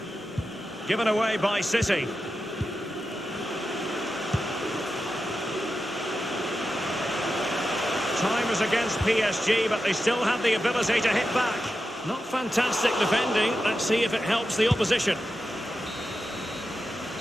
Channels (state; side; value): normal; both; correlation 0.90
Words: Given away by City. Time is against PSG, but they still have the ability to hit back. Not fantastic defending. Let's see if it helps the opposition.